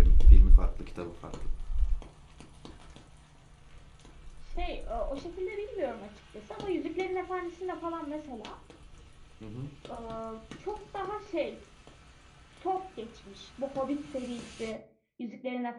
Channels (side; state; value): both; identical; correlation 1.00